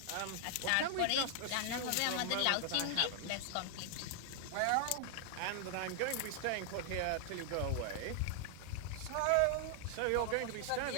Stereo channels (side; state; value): both; different; correlation 0.00